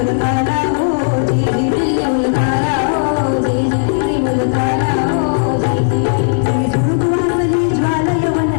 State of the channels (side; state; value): right; silent; digital silence